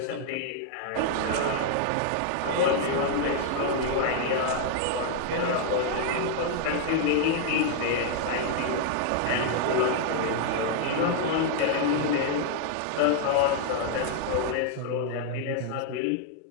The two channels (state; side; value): different; both; correlation 0.00